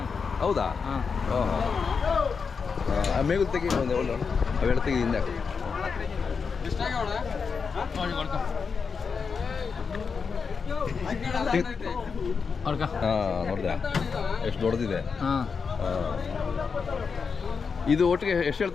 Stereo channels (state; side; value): quieter; right; 5.5 dB